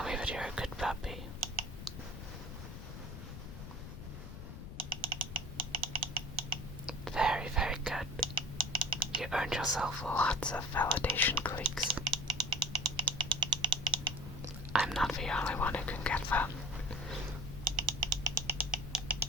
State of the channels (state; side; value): noise; left; rumble, 10 dB below the sound